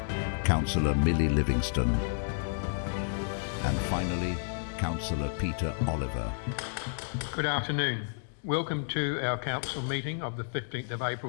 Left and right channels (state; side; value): silent; right; digital silence